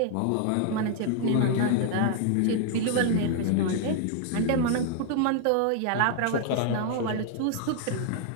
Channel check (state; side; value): different; both; correlation 0.00